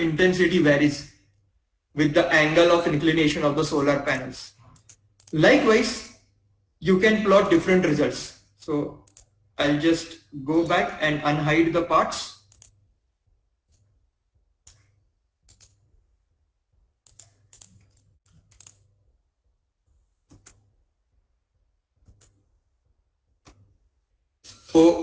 intensity varies with the angle of inclination of the solar panels. Likewise, you can plot different results. So I'll just go back and unhide the parts.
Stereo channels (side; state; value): both; identical; correlation 1.00